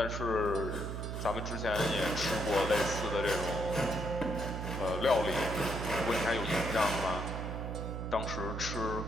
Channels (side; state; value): right; noise; hum, 4 dB below the sound